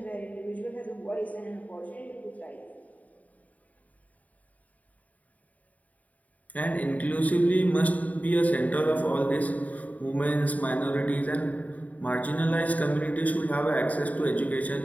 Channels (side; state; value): right; late; 0.071 ms